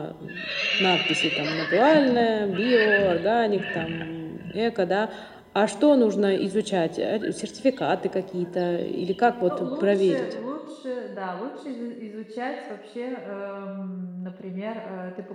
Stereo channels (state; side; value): identical; both; correlation 1.00